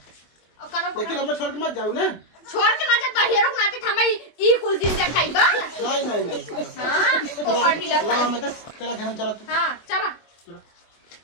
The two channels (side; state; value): right; late; 24 ms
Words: कनो लेकिन हमें छोड़ के मत जाओ ना छोड़ के ना जा हीरो नाते हमें ई कुल दिन से खाइबा नहीं नहीं नहीं हां पोपा ढीला ला मैं तेरा घर में चला तू हां चला